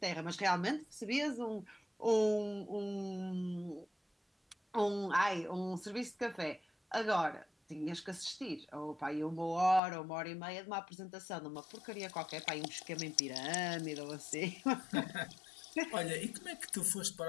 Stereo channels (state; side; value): drops out; right; at 9.8 s